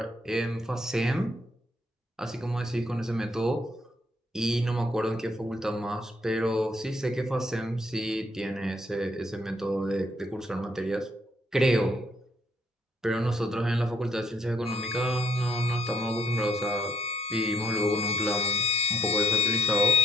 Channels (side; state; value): both; normal; correlation 0.70